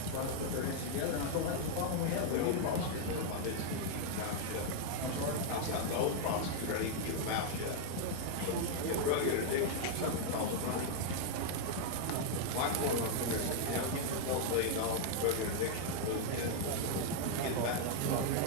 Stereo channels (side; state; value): both; different; correlation 0.00